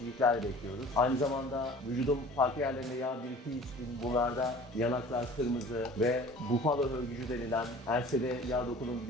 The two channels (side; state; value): both; normal; correlation 0.45